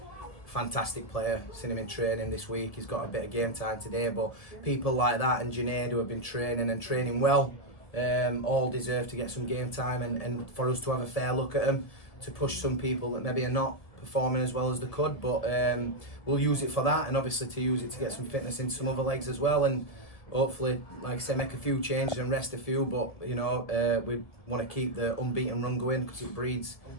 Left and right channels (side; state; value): right; late; 1.7 ms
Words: fantastic player. Seen him in training this week. He's got a bit of game time today, but people like that and Junaid, who have been training well, all deserve to get some game time, and for us to have a fair look at them, to push some people that maybe are not performing as well as they could, but we'll use it for that, and obviously to use it to get some fitness into some other legs as well, and hopefully, like I say, make a few changes and rest a few, but we want to keep the unbeaten run going because it breeds